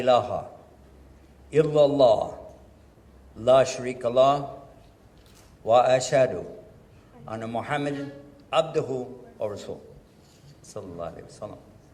إلا الله لا شريك له وأشهد أن محمد عبده ورسوله صلى الله عليه وسلم.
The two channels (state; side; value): identical; both; correlation 1.00